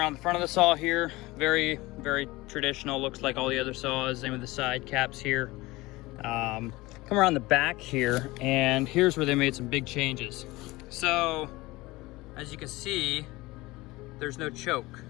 the front of the saw here, very, very traditional, looks like all the other saws. Same with the side caps here. Come around the back here, and here's where they made some big changes. So as you can see, there's no choke,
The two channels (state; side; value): quieter; right; 20.7 dB